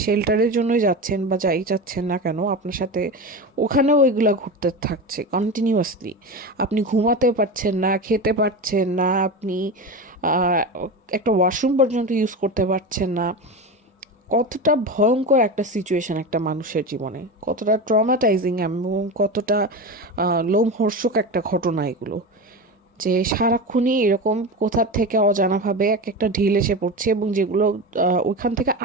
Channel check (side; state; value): both; normal; correlation 0.24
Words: শেল্টারের জন্যই যাচ্ছেন বা যাই যাচ্ছেন না কেন, আপনার সাথে ওখানেও ওইগুলো ঘুরতে থাকছে কন্টিনিউয়াসলি। আপনি ঘুমাতে পারছেন না, খেতে পারছেন না, আপনি একটা ওয়াশরুম পর্যন্ত ইউজ করতে পারছেন না। কতটা ভয়ঙ্কর একটা সিচুয়েশন একটা মানুষের জীবনে, কতটা ট্রমাটাইজিং এবং কতটা লোমহর্ষক একটা ঘটনা এগুলো, যে সারাক্ষণই এরকম কোথার থেকে অজানাভাবে এক একটা ঢিল এসে পড়ছে এবং যেগুলো ওখান থেকে